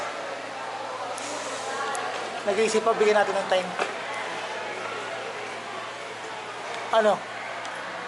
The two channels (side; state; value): both; identical; correlation 1.00